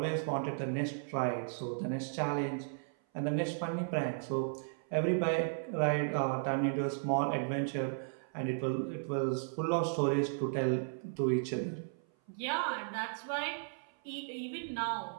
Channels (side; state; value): left; silent; 54 dB below the other